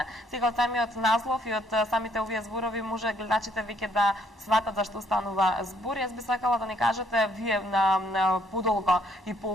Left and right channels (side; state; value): both; normal; correlation 0.66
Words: Сега од самиот наслов и од самите овие зборови може гледачите веќе да сватат зашто останува збор. Јас би сакала да ни кажете вие на подолго и